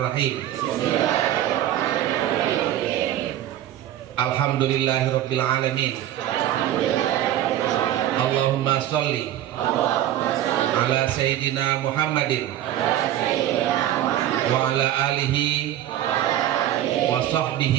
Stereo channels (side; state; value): left; quieter; 12.3 dB